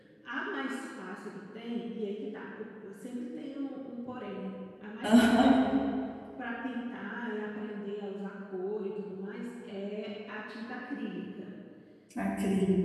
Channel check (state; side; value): identical; both; correlation 1.00